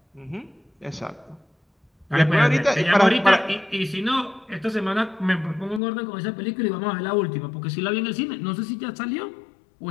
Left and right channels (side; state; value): right; drops out; at 5.8 s